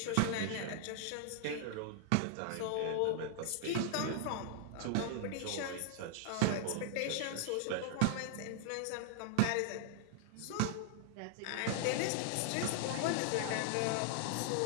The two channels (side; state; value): both; different; correlation -0.01